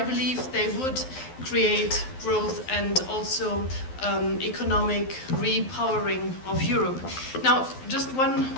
they would create growth and also economic repowering of Europe. Now, just one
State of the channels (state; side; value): late; right; 12 ms